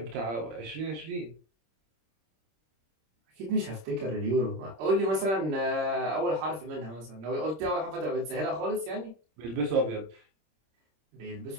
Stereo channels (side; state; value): left; late; 26 ms